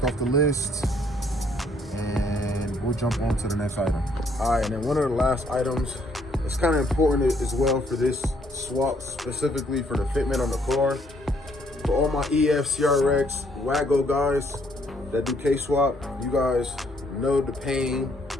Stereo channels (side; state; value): both; normal; correlation 0.67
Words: off the list, and we'll jump on to the next item. All right, and then one of the last items, it's kind of important as well for this swap, specifically for the fitment on the car. For all my EF, CRX, Wago guys that do K-swap, you guys know the pain